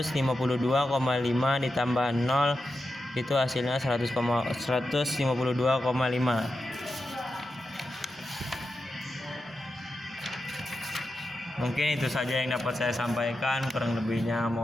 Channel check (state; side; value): normal; both; correlation 0.89